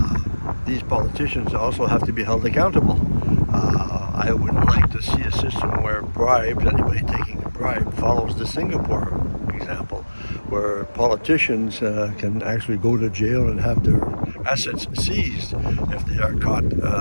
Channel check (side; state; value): both; inverted; correlation -1.00